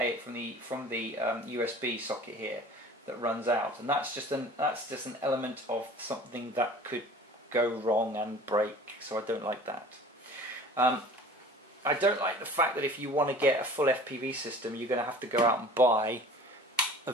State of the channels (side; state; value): both; normal; correlation 0.44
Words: socket here that runs out, and that's just an element of something that could go wrong and break. So I don't like that. I don't like the fact that if you want to get a full FPV system, you're going to have to go out and buy a